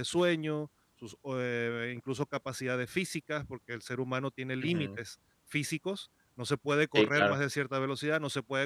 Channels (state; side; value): identical; both; correlation 1.00